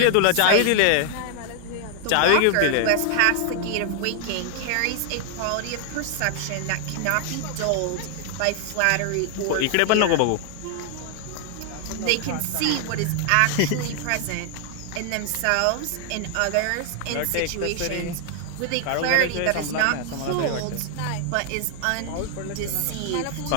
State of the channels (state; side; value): different; both; correlation 0.00